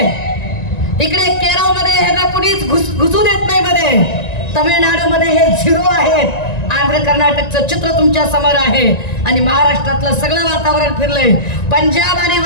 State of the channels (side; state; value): right; late; 1.9 ms